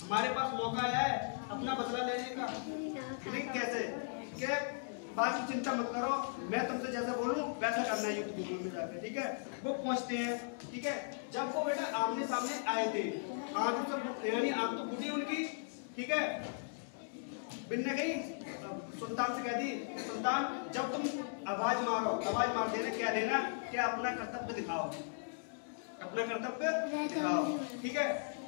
हमारे पास मौका आया है अपना बदला लेने का, लेकिन कैसे कि बाकी चिंता मत करो, मैं तुमसे जैसा बोलूं वैसा करना है युद्ध भूमि में जाकर, ठीक है। वो पहुंचते हैं, ठीक है। जब वो बेटा आमने सामने आए थे, आंख तो यानी आंख तो फूटी उनकी, ठीक है। बिन्ने गई सुल्तान से कह दी, सुल्तान जब तुम आवाज मार देना, क्या देना कि अपना कर्तव्य दिखाओ, ठीक है।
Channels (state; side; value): silent; right; digital silence